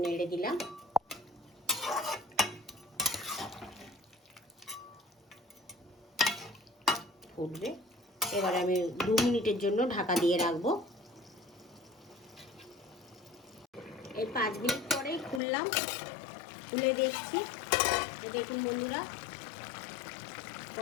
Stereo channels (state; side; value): drops out; right; at 15.4 s